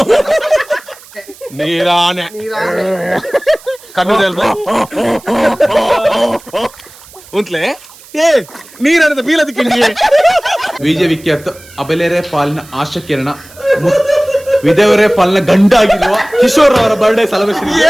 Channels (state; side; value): noise; right; hiss, 22 dB below the sound